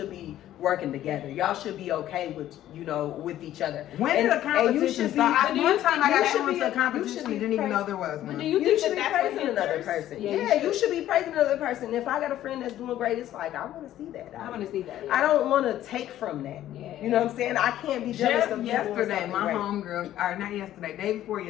be working together. Y'all should be okay with, you know, with each other. When did the competition start? One time I got into a competition and didn't even know there was one. Do you think should be that's praising another person? Yeah, you should be praising another person. If I got a friend that's doing great, it's like, I want to see that. I want to see that. Yeah. I don't want to take from that. Yeah. You know what I'm saying? I can't be jealous of yesterday, my homegirl, or not yesterday, day before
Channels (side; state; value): right; quieter; 12.8 dB